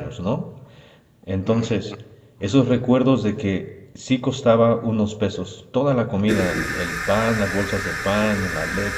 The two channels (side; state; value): both; identical; correlation 1.00